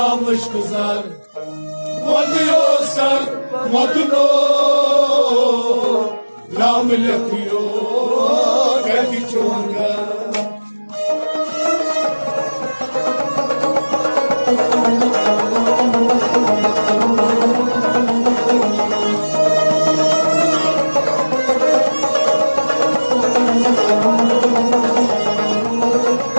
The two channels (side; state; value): both; inverted; correlation -1.00